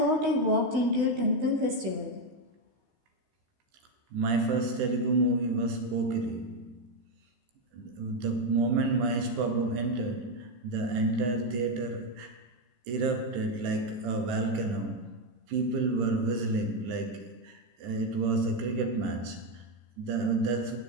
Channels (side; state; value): left; late; 16 ms